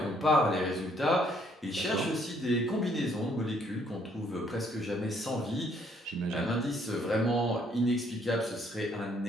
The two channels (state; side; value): normal; both; correlation 0.67